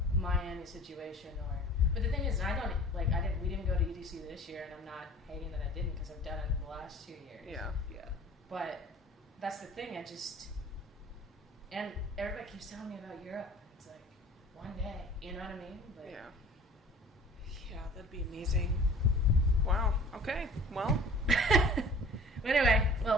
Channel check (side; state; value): both; normal; correlation 0.46